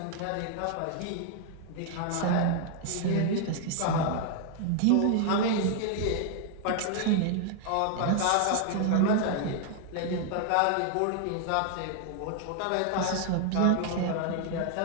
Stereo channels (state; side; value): different; both; correlation 0.00